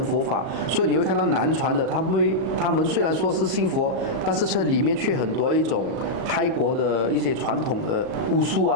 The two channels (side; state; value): left; late; 37 ms